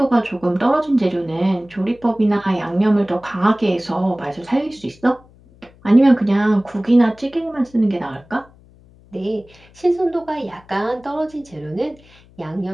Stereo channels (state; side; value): noise; left; hum, 27 dB below the sound